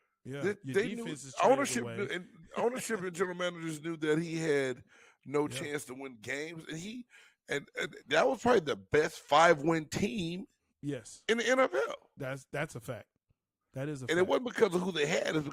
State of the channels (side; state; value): both; identical; correlation 1.00